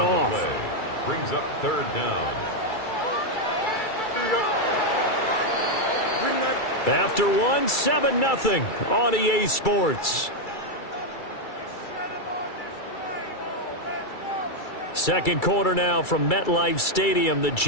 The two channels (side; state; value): right; late; 2.3 ms